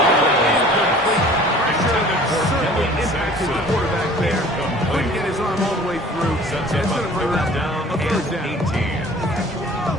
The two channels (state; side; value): normal; both; correlation 0.48